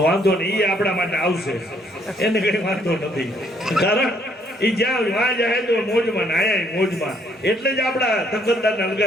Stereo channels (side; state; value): both; normal; correlation 0.67